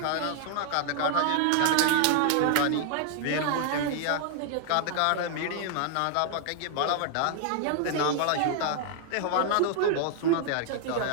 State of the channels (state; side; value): different; both; correlation 0.00